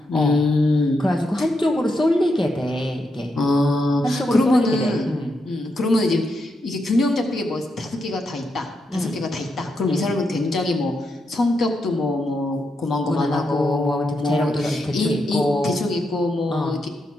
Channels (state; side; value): normal; both; correlation 0.83